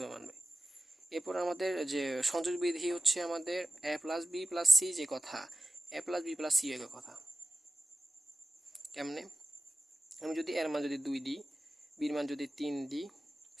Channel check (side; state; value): both; normal; correlation 0.95